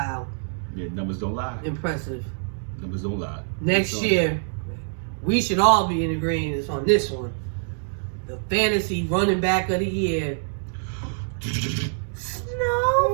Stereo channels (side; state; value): left; silent; digital silence